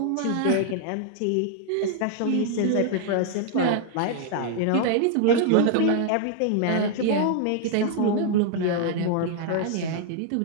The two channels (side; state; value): both; different; correlation 0.00